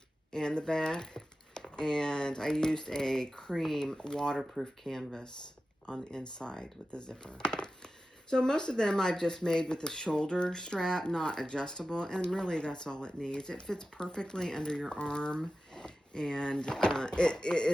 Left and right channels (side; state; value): both; normal; correlation 0.94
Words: and the back. And I used a cream waterproof canvas on the inside with the zipper. So most of them I've just made with the shoulder strap, not adjustable, and really that's all it needs. It fits perfectly under your arm, and it